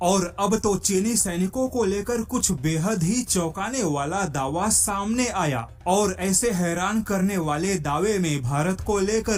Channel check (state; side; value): identical; both; correlation 1.00